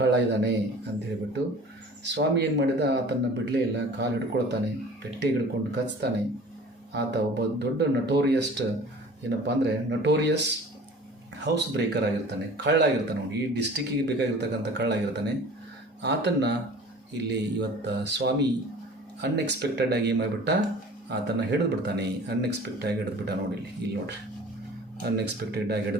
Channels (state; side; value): normal; both; correlation 0.44